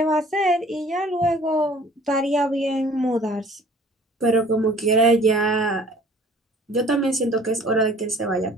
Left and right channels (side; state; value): both; normal; correlation 0.51